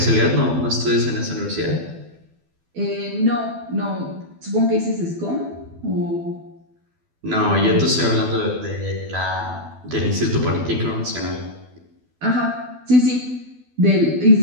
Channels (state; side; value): late; left; 12 ms